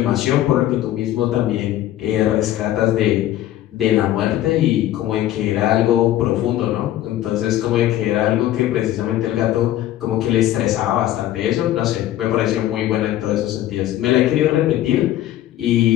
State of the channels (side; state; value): right; quieter; 13.4 dB